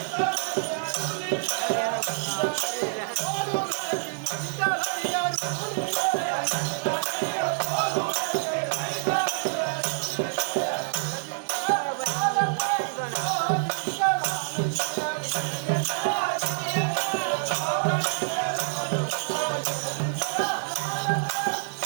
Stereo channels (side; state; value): left; silent; 60 dB below the other